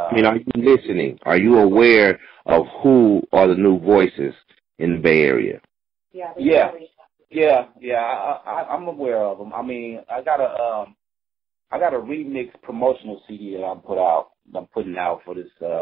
mean, are you listening? Are you aware of who are the new voices in the Bay Area? Yeah, I'm aware of them. I mean, I got a remix promotional CD that I'm putting out for this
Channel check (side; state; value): left; quieter; 8.1 dB